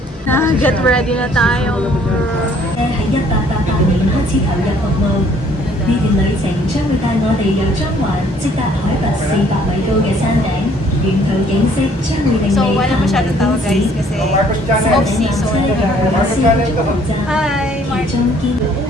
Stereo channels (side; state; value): both; normal; correlation 0.61